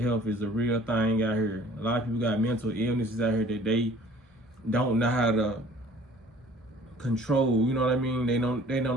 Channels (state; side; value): normal; both; correlation 0.52